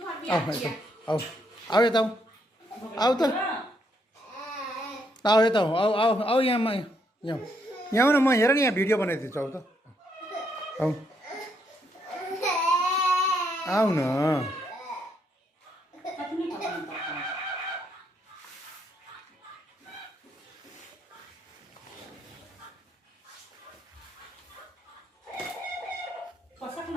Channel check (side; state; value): both; normal; correlation 0.75